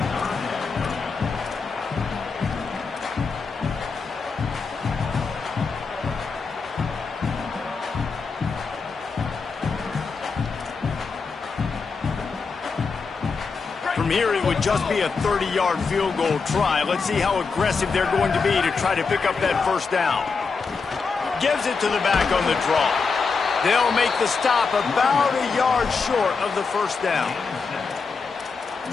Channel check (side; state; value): right; quieter; 4.9 dB